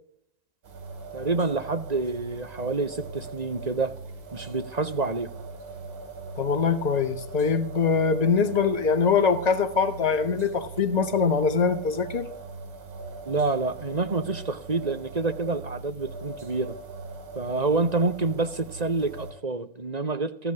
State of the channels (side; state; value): left; late; 1.9 ms